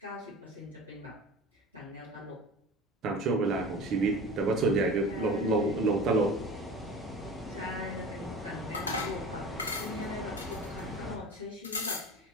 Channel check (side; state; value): both; normal; correlation 0.36